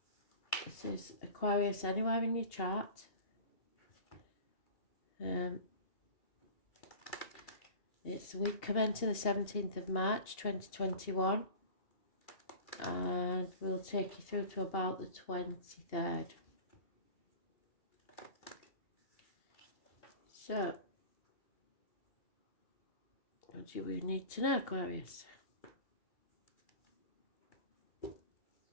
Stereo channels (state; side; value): late; right; 2.8 ms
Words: This is Aquarius anywhere in your chart. It's week commencing the 17th of March 2021, and we'll take you through to about the 23rd. So, what do we need to know, Aquarius?